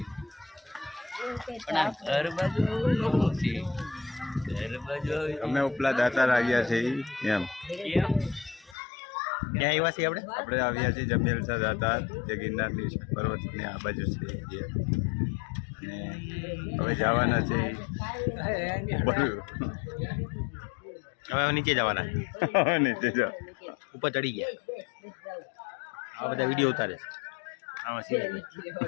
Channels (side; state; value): right; drops out; at 8.8 s